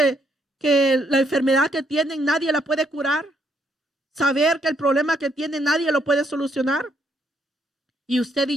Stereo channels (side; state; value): both; normal; correlation 0.72